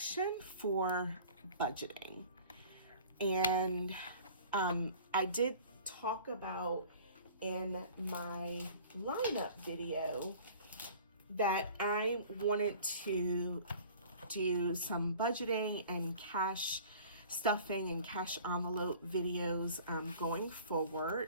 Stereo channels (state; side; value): inverted; both; correlation -0.45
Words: for budgeting. And I did talk about in my lineup video that I wanted to do some budgeting and cash stuffing and cash envelope videos going